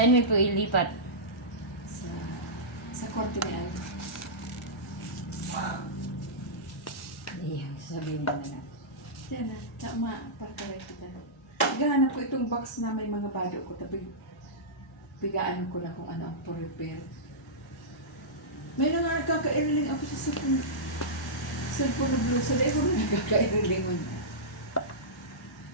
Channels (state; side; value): normal; both; correlation -0.15